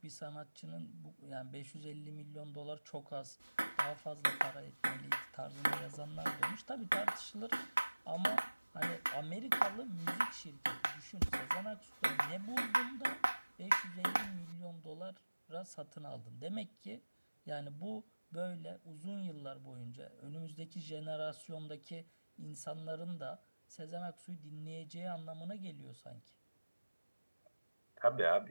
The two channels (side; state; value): both; inverted; correlation -1.00